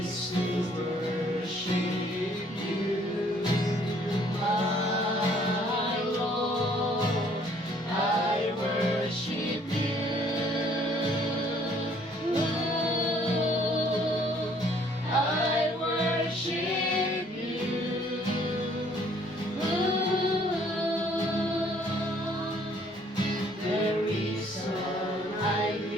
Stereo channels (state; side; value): normal; both; correlation 0.61